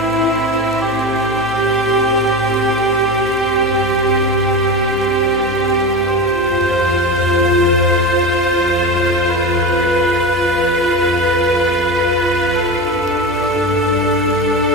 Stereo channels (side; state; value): left; noise; hum, 17 dB below the sound